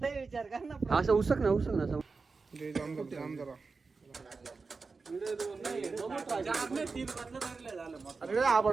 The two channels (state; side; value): quieter; left; 4.4 dB